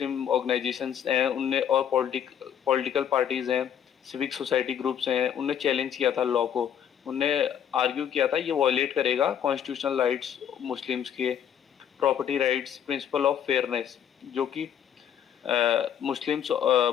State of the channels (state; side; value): quieter; right; 9.2 dB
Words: ऑर्गेनाइजेशंस हैं उनने और पॉलिटिकल पार्टीज हैं, सिविक सोसाइटी ग्रुप्स हैं, उनने चैलेंज किया था लॉ को. उनने आर्ग्यू किया था ये वायलेट करेगा कॉन्स्टिट्यूशनल राइट्स मुस्लिम्स के, property rights, principle of fairness, जो कि